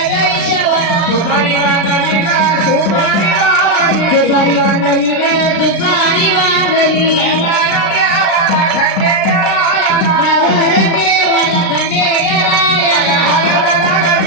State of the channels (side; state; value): right; late; 36 ms